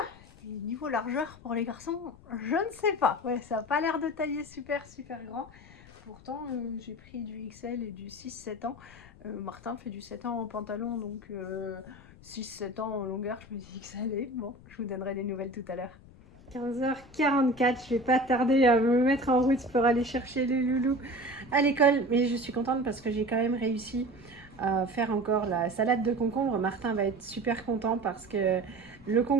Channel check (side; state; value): left; noise; rumble, 22 dB below the sound